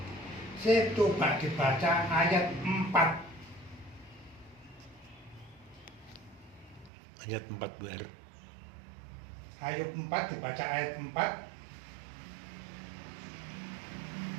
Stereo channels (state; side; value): drops out; left; at 6.9 s